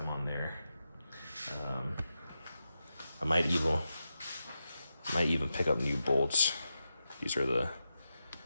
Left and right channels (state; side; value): inverted; both; correlation -0.89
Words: on there. I might even pick up new bolts. These are the